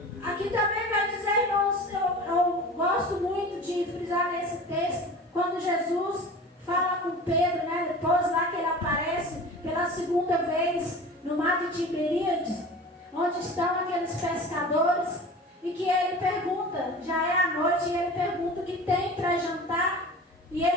Aqui também vai dizer, irmãos, eu gosto muito de frisar nesse texto, quando Jesus fala com Pedro, né, depois lá que ele aparece pela segunda vez no mar de Tiberíades, onde estão aqueles pescadores, e que ele pergunta, já é a noite, e ele pergunta o que tem para jantar, e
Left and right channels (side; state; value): both; normal; correlation 0.37